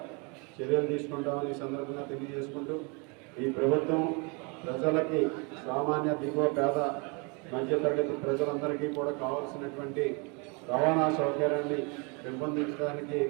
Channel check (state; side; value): quieter; left; 31.9 dB